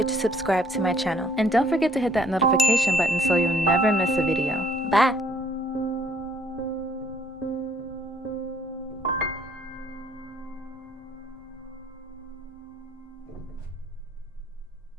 to subscribe to my channel. And don't forget to hit that notification button so you'll never miss a video. Bye!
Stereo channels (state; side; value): normal; both; correlation 0.63